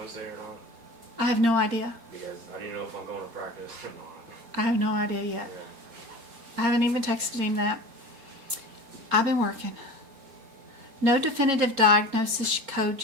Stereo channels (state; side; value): late; left; 4.3 ms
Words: or not? I have no idea. Because I didn't know if I'm going to practice or not. I have no idea yet. Yeah. I haven't even texted him that. I've been working. No definitive diagnosis code